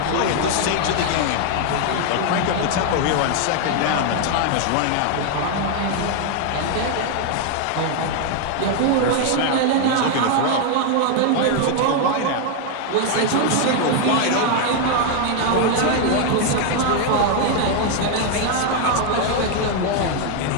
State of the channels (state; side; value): different; both; correlation 0.00